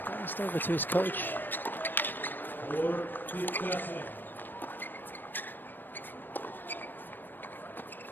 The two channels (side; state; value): right; late; 0.093 ms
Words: glanced over to his coach.